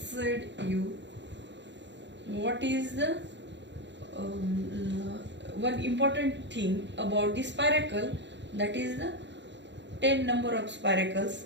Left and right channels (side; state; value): left; late; 0.52 ms